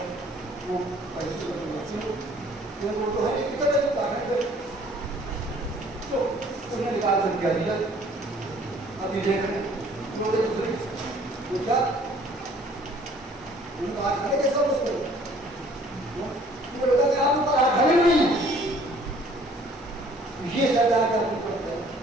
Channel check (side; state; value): both; normal; correlation 0.56